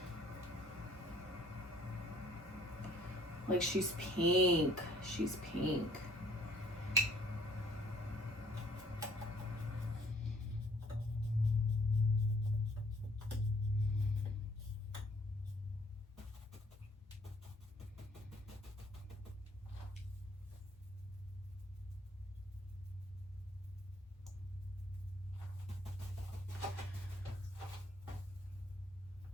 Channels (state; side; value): normal; both; correlation 0.60